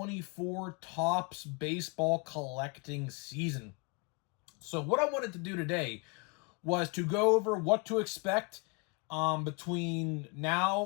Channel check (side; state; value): right; quieter; 30.2 dB